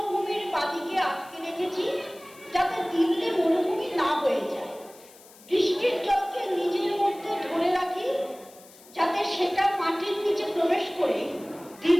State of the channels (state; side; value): noise; left; hiss, 23 dB below the sound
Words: বাদিকে আটকে রেখেছি যাতে দিল্লি মরুভূমি না হয়ে যায়। বৃষ্টির জলকে নিজের মধ্যে ধরে রাখি যাতে সেটা মাটির নিচে প্রবেশ করে